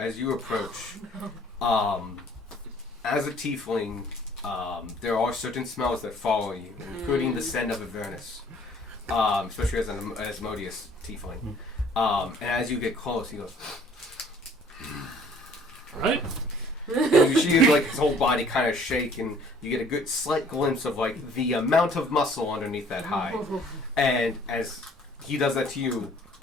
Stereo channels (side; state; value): both; normal; correlation 0.56